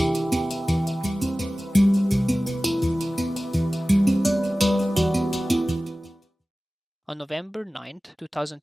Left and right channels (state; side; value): normal; both; correlation 0.96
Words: On November 9th,